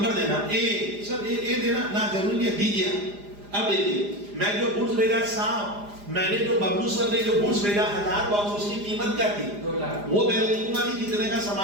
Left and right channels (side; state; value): left; late; 4.9 ms